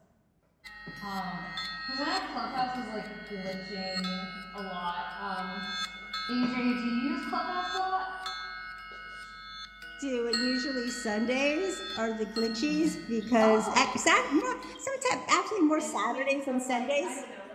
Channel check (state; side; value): identical; both; correlation 1.00